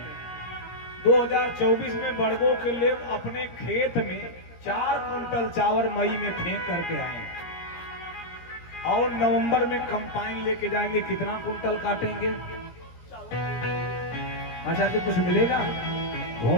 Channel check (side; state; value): right; late; 17 ms